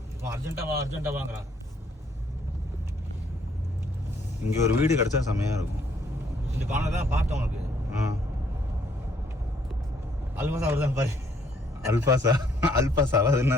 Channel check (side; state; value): both; normal; correlation 0.67